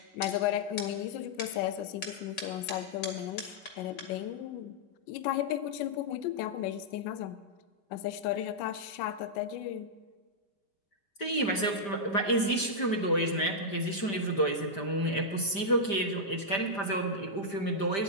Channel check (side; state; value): right; late; 5.0 ms